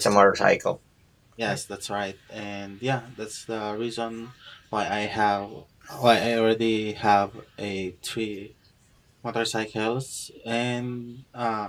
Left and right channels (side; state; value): both; identical; correlation 1.00